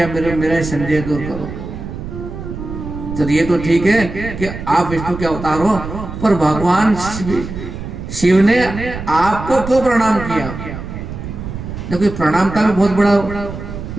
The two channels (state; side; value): noise; right; rumble, 9 dB below the sound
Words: मेरा संदेह दूर करो। तो ये तो ठीक है कि आप विष्णु के अवतार हो, पर भगवान शिव ने आपको क्यों प्रणाम किया? क्योंकि प्रणाम का भी बहुत बड़ा